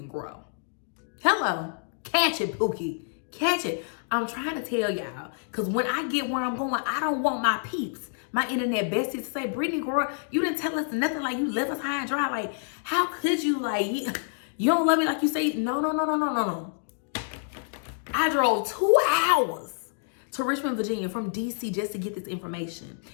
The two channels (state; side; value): silent; right; digital silence